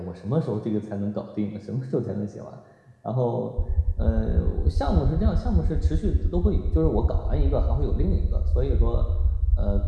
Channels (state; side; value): identical; both; correlation 1.00